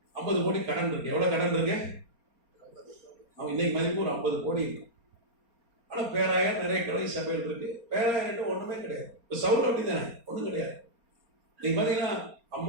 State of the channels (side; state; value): left; late; 4.3 ms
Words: 50 கோடி கடன் இருக்கு. எவ்வளோ கடன் இருக்கு? அவன் இன்னைக்கு மதிப்பு ஒரு 50 கோடி இருக்கு. ஆனால் பேராயர் நிறைய கிளை சபையில் இருக்கு. பேராயர்கிட்ட ஒன்றுமே கிடையாது. இப்போ சவுல் அப்படி தானே, ஒன்றும் கிடையாது. நீங்க பார்த்தீங்கன்னா